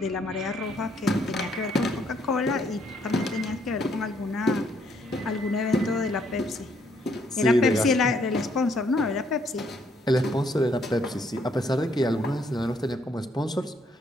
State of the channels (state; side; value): normal; both; correlation 0.69